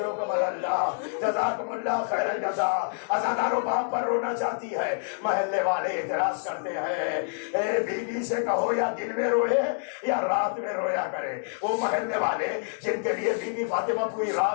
اللہ، جزاکم اللہ خیر الجزا۔ عزادارو باپ پر رونا چاہتی ہے، محلے والے اعتراض کرتے ہیں اے بی بی سے کہو یا دن میں روئے یا رات میں رویا کرے۔ وہ محلے والے جن کے لیے بی بی فاطمہ پوری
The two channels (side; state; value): right; silent; 59 dB below the other